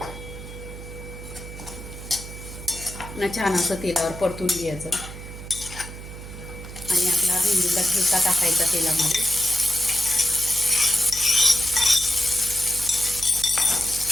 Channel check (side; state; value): right; noise; hum, 12 dB below the sound